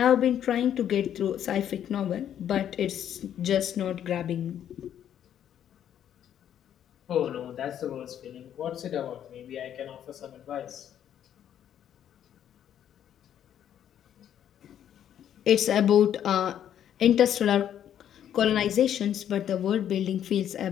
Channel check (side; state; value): right; quieter; 10.1 dB